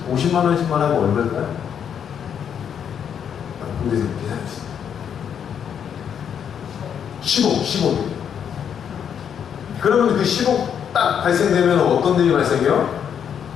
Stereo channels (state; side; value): quieter; right; 8.2 dB